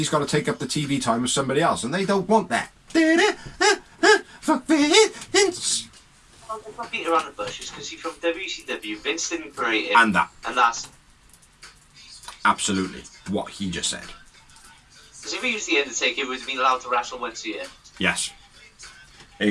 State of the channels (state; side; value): identical; both; correlation 1.00